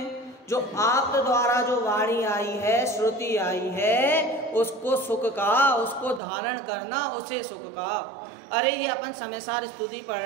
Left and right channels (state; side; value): drops out; left; at 6.2 s